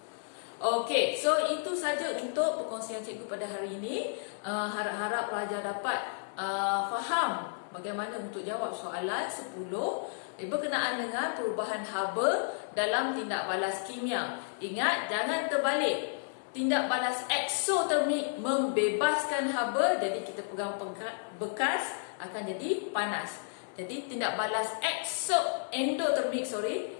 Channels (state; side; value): silent; right; digital silence